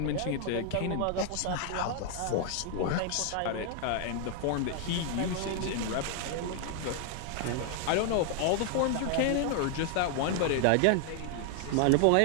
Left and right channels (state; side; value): different; both; correlation 0.00